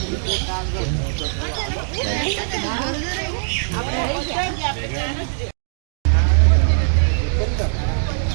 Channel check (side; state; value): left; silent; digital silence